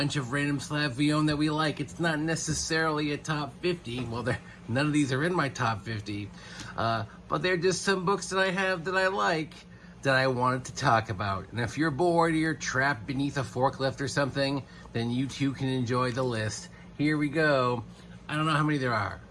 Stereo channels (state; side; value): identical; both; correlation 1.00